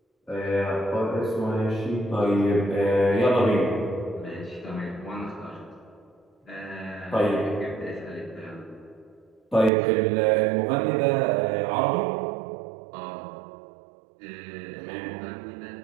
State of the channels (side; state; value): left; drops out; at 9.7 s